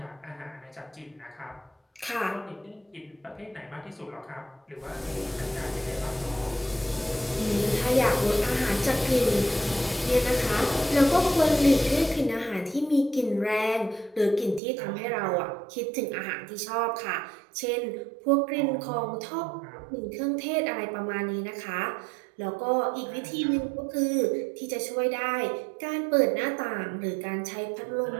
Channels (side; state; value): left; drops out; at 14.6 s